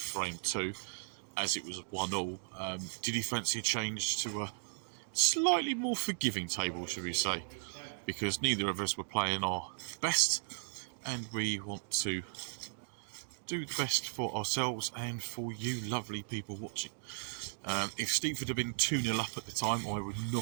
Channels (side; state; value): left; silent; digital silence